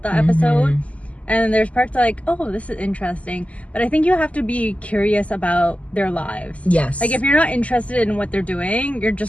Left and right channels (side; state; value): right; late; 0.067 ms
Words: the episode, and there's parts like, oh, this is interesting, but I think you have to be curious about their lives. Yes. Like if you're not interested in what they're doing, you're